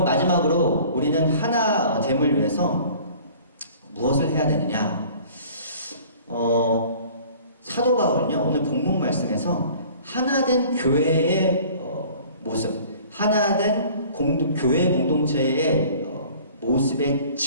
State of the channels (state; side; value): inverted; both; correlation -0.49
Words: 마지막으로 우리는 하나됨을 위해서 무엇을 해야 되느냐? 사도 바울은요, 오늘 본문 말씀에서 하나된 교회의 모습, 하나된 교회 공동체의 모습의